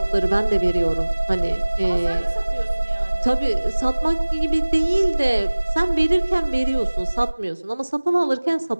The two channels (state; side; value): inverted; both; correlation -1.00